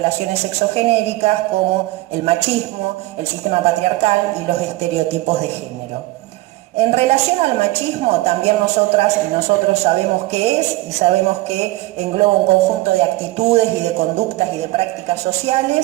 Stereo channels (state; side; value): quieter; left; 18.9 dB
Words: sexogenéricas, como el machismo, el sistema patriarcal y los estereotipos de género. En relación al machismo, también nosotras y nosotros sabemos qué es y sabemos que engloba un conjunto de actitudes y de conductas y de prácticas